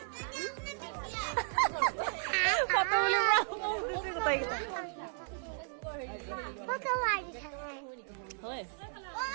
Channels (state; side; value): silent; left; 55 dB below the other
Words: ফটো উলিয়াব গোটেইকেইটা হয়